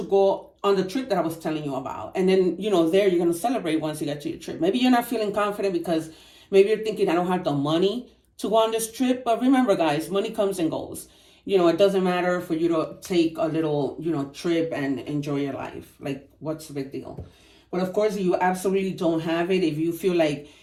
go on the trip that I was telling you about. And then, there you're going to celebrate once you get to your trip. Maybe you're not feeling confident because maybe you're thinking, I don't have the money to go on this trip. But remember, guys, money comes and goes. It doesn't matter for you to take a little, trip and enjoy your life. Like, what's the big deal? But of course, you absolutely don't have it. If you feel like,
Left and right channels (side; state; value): both; identical; correlation 1.00